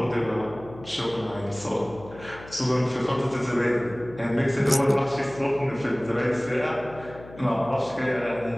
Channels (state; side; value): noise; left; hum, 18 dB below the sound